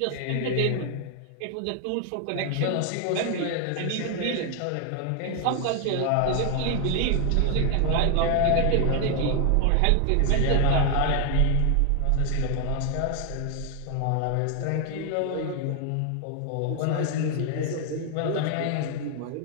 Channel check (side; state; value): both; different; correlation 0.00